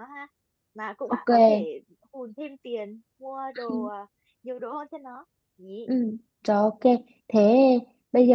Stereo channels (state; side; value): identical; both; correlation 1.00